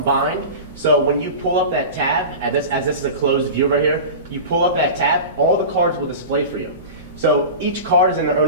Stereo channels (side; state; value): both; inverted; correlation -0.31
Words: So when you pull up that tab, as this is a closed view right here, you pull up that tab, all the cards will display for you. So each card is in their